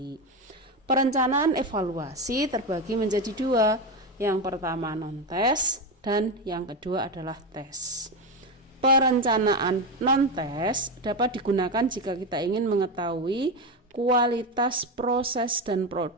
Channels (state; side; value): normal; both; correlation 0.14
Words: Perencanaan evaluasi terbagi menjadi dua. Yang pertama non-tes dan yang kedua adalah tes. Perencanaan non-tes dapat digunakan jika kita ingin mengetahui kualitas proses dan